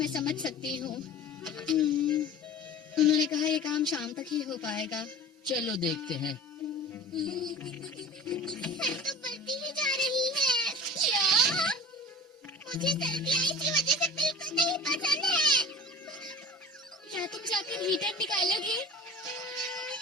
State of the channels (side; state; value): both; normal; correlation 0.38